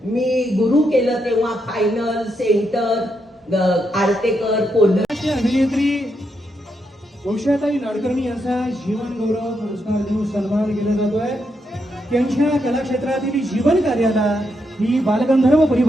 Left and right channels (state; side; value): normal; both; correlation 0.81